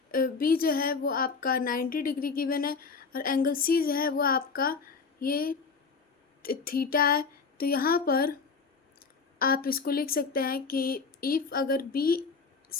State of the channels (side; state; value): right; quieter; 5.0 dB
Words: B जो है वो आपका 90 डिग्री गिवन है और एंगल C जो है वो आपका ये थीटा है। तो यहाँ पर आप इसको लिख सकते हैं कि इफ़ अगर